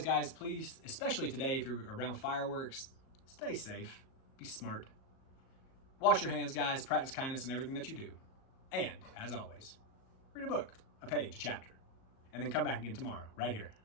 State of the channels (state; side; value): late; right; 38 ms